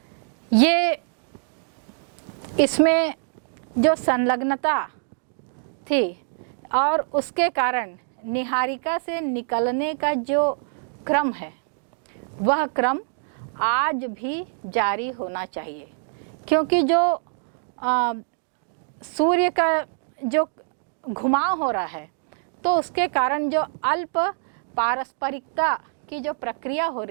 ये इसमें जो संलग्नता थी और उसके कारण निहारिका से निकलने का जो क्रम है वह क्रम आज भी जारी होना चाहिए, क्योंकि जो सूर्य का जो घुमाव हो रहा है तो उसके कारण जो अल्प पारस्परिकता की जो प्रक्रिया हो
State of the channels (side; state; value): left; silent; digital silence